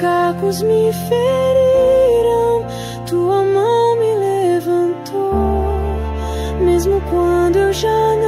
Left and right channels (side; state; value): both; identical; correlation 1.00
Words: me feriram. Tua mão me levantou, mesmo quando eu já